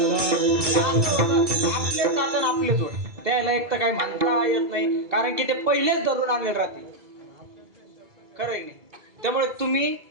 आपलेच जातं आपलेच ओढ. त्याला एक तर काही म्हणता येत नाही कारण की ते पहिलेच धरून आणले राहते. खरं आहे नाही. त्यामुळे तुम्ही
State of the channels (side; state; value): left; late; 2.3 ms